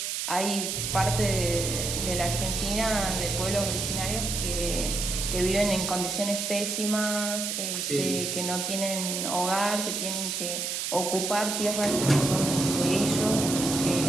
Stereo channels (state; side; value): noise; right; hiss, 2 dB below the sound